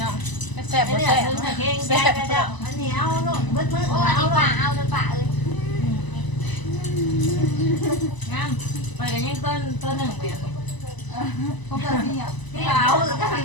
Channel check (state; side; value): late; right; 1.0 ms